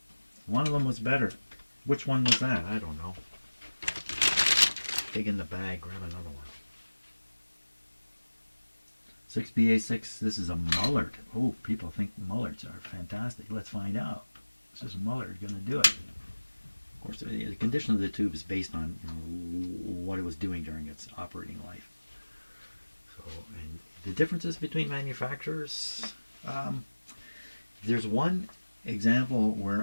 One of them was better. Which one was that? I don't know. Dig in the bag, grab another one. 6BA6, this is a Mullard. Oh, people think Mullards are fantastic. Let's find out. This is Mullard going to do it. Of course, the condition of the tube is based on what it was doing during its operating life. So, and the differences between manufacturers, there's one example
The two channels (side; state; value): both; inverted; correlation -1.00